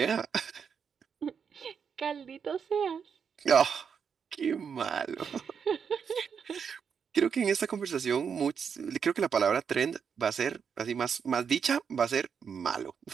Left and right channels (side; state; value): left; quieter; 6.8 dB